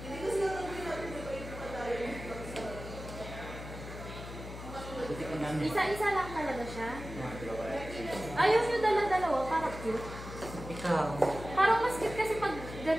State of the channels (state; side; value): noise; left; hum, 11 dB below the sound